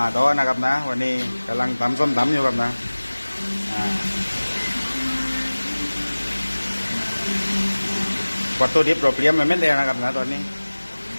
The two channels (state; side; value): inverted; both; correlation -1.00